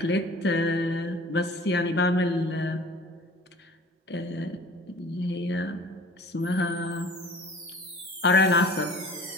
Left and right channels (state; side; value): normal; both; correlation 0.46